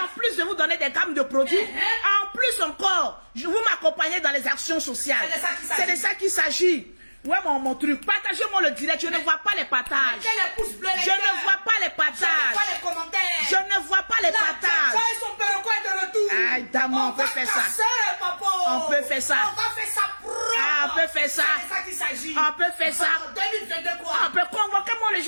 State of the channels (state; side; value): inverted; both; correlation -1.00